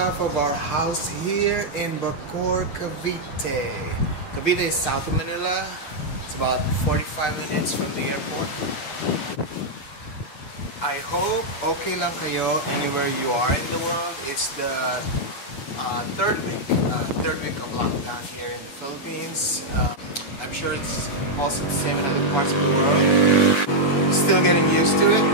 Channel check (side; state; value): right; late; 9.5 ms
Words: of our house here in Bacoor, Cavite. Cavite is south of Manila. It's about 45 minutes from the airport. I hope okay lang kayo anywhere you are in the world. It's the third week of lockdown here in the Philippines. I'm sure it's also the same in other parts of the world. Still getting used to it.